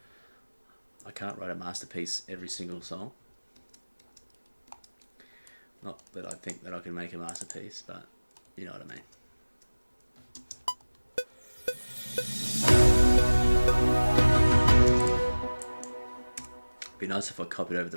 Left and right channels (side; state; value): both; inverted; correlation -1.00